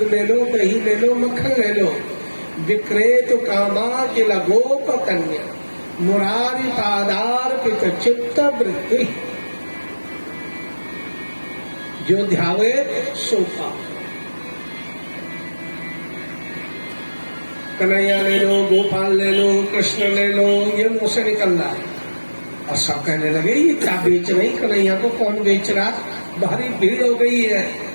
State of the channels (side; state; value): both; inverted; correlation -1.00